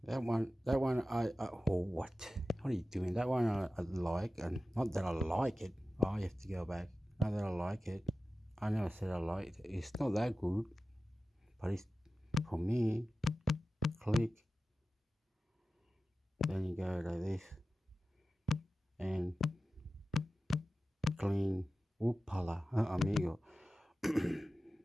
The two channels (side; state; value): both; normal; correlation 0.95